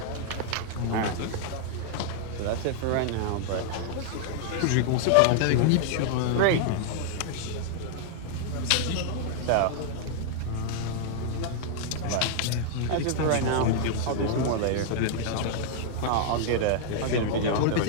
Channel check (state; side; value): different; both; correlation 0.00